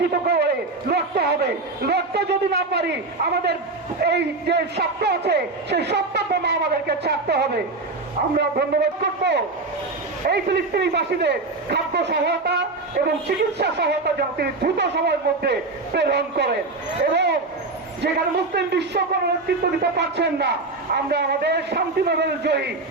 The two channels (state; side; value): quieter; left; 3.4 dB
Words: করে লড়তে হবে। লড়তে যদি না পারি, আমাদের এই যে সত্য আছে সেই সত্যটা আমাদেরকে ছাড়তে হবে। আমরা ধন্যবাদ করব এই ফিলিস্তিনিবাসীদের খাদ্য সহায়তা এবং চিকিৎসা সহায়তা যেন তিনি দ্রুত সময়ের মধ্যে প্রেরণ করেন, এবং যেখানে মুসলিম বিশ্ব কোনো নেতৃত্ব দিতে পারছেন না, আমরা আমাদের শান্তি নোবেল জয়ী